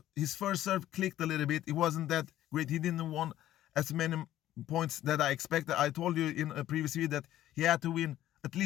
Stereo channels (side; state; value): right; quieter; 13.2 dB